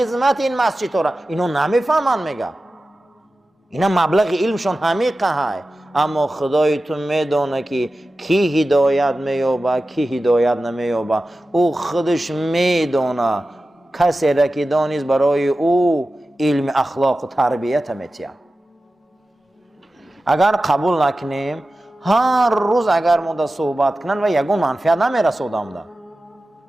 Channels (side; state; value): both; normal; correlation 0.94